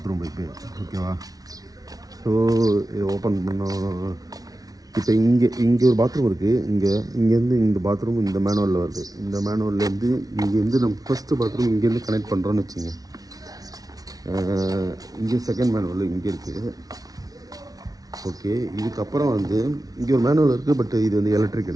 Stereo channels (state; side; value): late; left; 0.18 ms